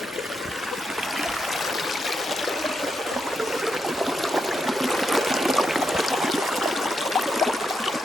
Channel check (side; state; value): both; normal; correlation 0.83